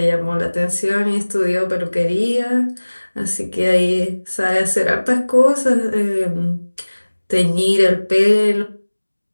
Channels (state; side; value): inverted; both; correlation -1.00